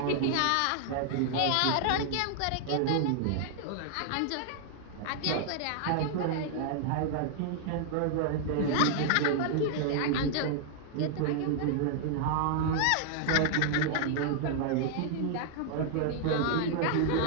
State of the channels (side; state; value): both; different; correlation 0.00